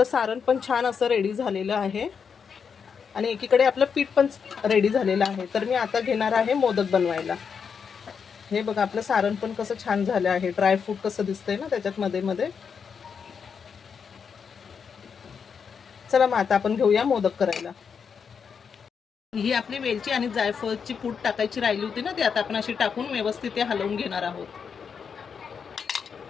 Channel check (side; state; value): right; quieter; 6.4 dB